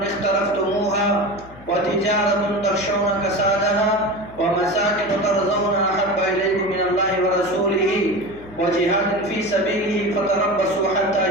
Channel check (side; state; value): left; noise; hum, 21 dB below the sound